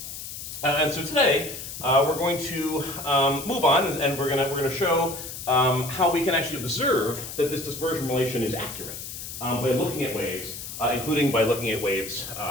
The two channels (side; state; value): left; noise; hiss, 9 dB below the sound